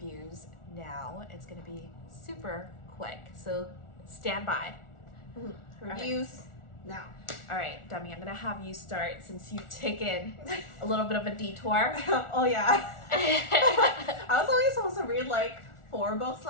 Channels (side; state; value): right; late; 1.4 ms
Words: now. It's gonna be super quick, so stand by. Mm-hmm. Reviews now. All right, Demi, I'm gonna have you start since you've taken a little bit of a detour. Oh yeah. I was only supposed to read 4 books